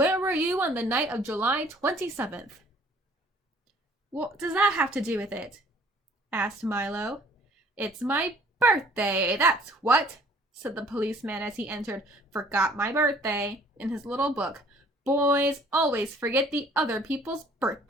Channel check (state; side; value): normal; both; correlation 0.56